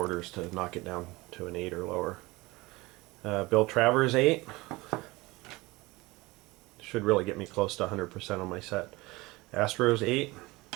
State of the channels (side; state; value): left; quieter; 21.8 dB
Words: to knock it down to an 8 or lower. Bill Travers, 8. Should really get me close to 100% on my set. Astros, 8.